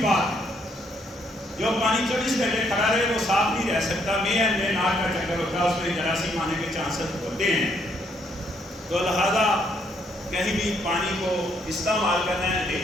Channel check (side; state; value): both; normal; correlation 0.71